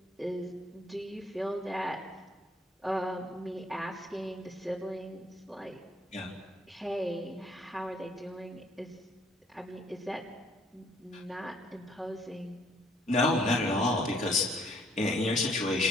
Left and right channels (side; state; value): both; normal; correlation 0.64